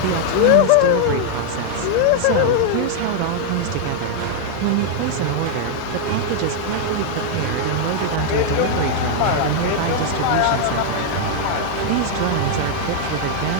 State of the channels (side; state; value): both; different; correlation -0.01